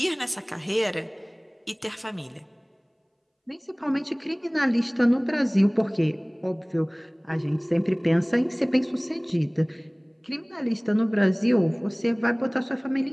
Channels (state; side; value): identical; both; correlation 1.00